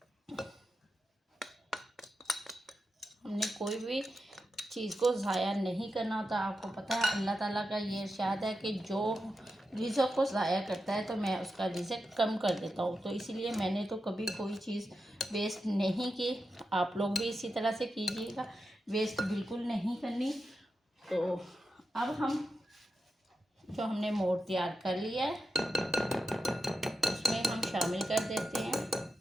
हमने कोई भी चीज़ को ज़ाया नहीं करना होता। आपको पता है अल्लाह ताला का ये इरशाद है कि जो रिज़्क़ को ज़ाया करता है तो मैं उसका रिज़्क़ कम कर देता हूँ। तो इसीलिए मैंने तो कभी कोई चीज़ वेस्ट नहीं की। आप लोग भी इसी तरह से कीजिएगा, वेस्ट बिल्कुल नहीं करनी। तो अब हम जो हमने मोड तैयार कर लिया है उसमें हम शामिल कर देते हैं।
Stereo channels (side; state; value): both; normal; correlation 0.88